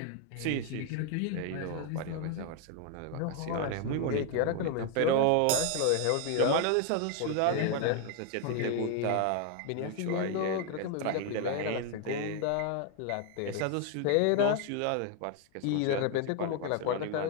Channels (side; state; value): both; different; correlation 0.01